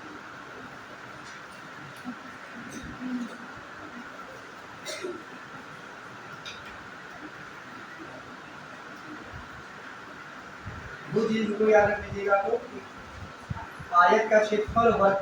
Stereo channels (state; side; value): identical; both; correlation 1.00